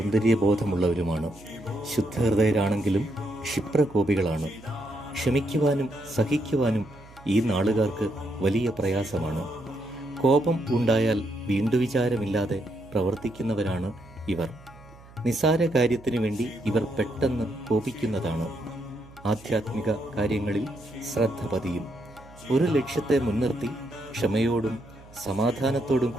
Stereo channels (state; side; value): noise; right; hum, 22 dB below the sound